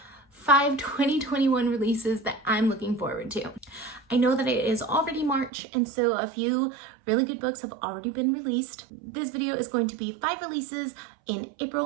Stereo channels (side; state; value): left; drops out; at 5.5 s